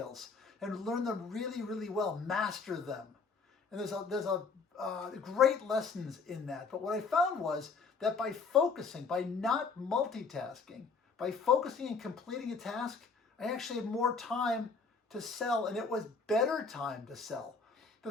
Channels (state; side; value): quieter; right; 4.8 dB